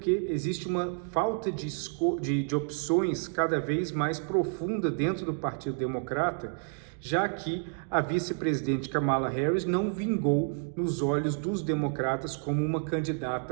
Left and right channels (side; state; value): left; silent; 58 dB below the other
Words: existe uma falta de opções cada vez mais profunda dentro do Partido Democrata, já que a vice-presidente Kamala Harris não vingou nos olhos dos democratas como uma